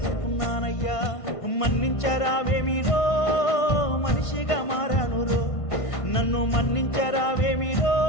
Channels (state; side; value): late; right; 1.5 ms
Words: మన్నించరావేమిరో మనిషిగా మారానురో నన్ను మన్నించరావేమిరో